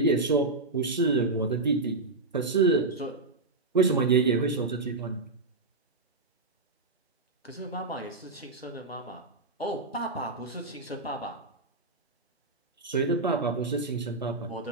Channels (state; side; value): quieter; left; 3.3 dB